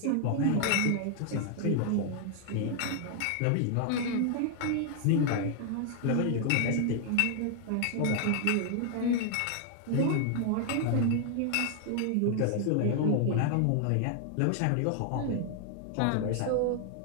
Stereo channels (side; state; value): both; different; correlation 0.00